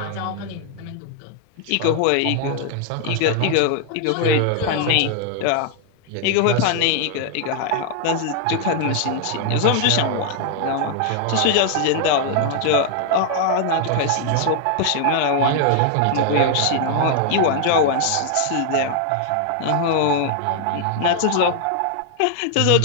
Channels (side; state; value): both; different; correlation 0.00